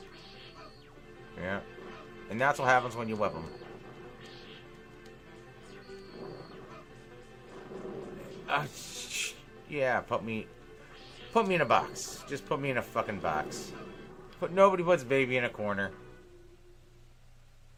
Yeah. And that's what happens when you whip them. Yeah, put me in a box. Just put me in a fucking box. Nobody puts baby in a corner.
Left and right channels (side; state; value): both; identical; correlation 1.00